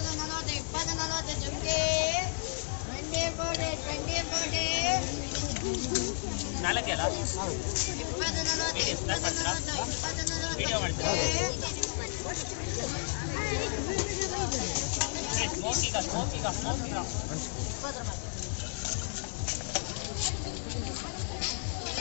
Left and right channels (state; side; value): silent; right; digital silence